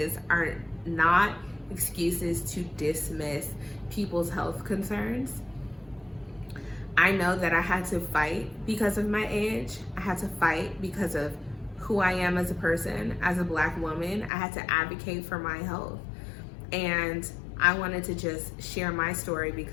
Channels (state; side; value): drops out; right; at 14.3 s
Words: are not excuses to dismiss people's health concerns. I know that I had to fight because of my age. I had to fight because of who I am as a person, as a Black woman. I had to advocate for my health. And I wanted to just share my story